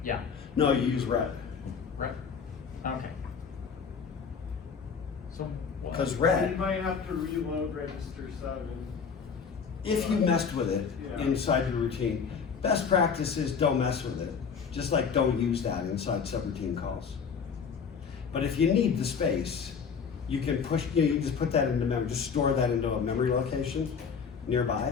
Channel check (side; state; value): right; quieter; 6.2 dB